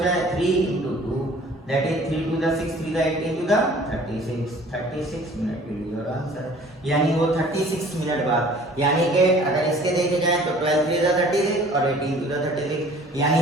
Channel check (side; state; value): both; normal; correlation 0.50